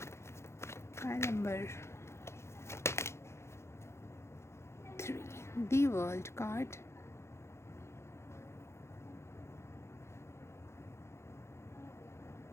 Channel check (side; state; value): right; late; 0.13 ms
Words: Number 3 the world card.